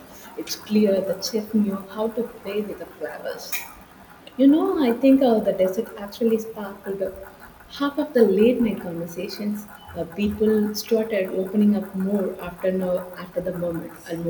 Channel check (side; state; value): both; identical; correlation 1.00